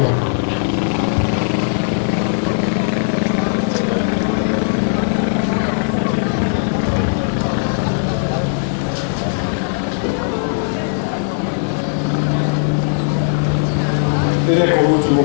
Ed ecco l'ultimo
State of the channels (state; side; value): silent; right; digital silence